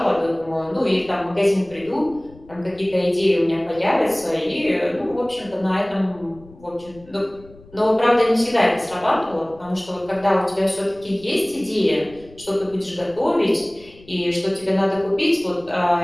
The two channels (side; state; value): left; noise; rumble, 23 dB below the sound